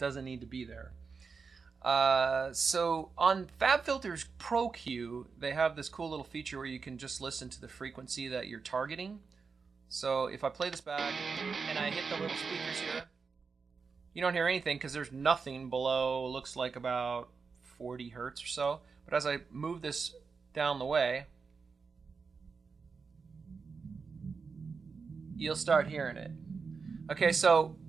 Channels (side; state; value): left; quieter; 5.1 dB